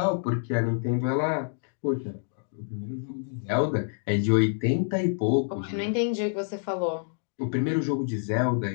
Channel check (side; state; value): right; silent; digital silence